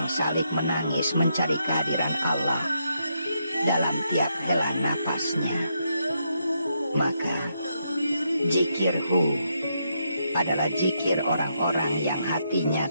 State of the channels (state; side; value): inverted; both; correlation -0.79